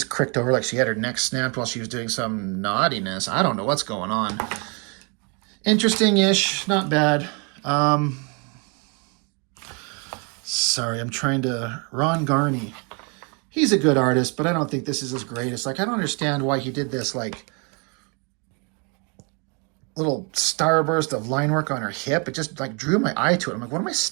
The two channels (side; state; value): left; quieter; 34.3 dB